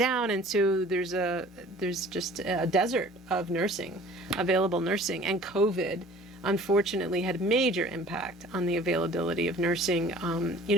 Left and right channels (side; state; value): both; normal; correlation 0.48